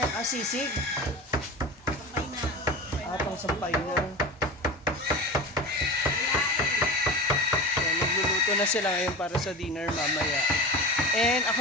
Ah, sisig? Sampay na. Ah, pang sampay na. Ayan, nagluluto na sila ngayon para sa dinner mamaya. And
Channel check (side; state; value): both; normal; correlation 0.30